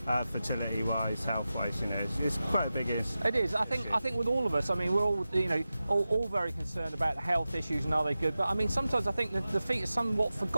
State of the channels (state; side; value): inverted; both; correlation -0.94